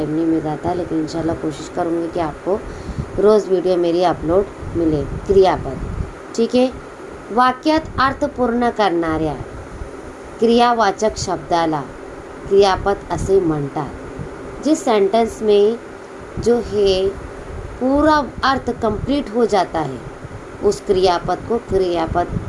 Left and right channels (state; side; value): identical; both; correlation 1.00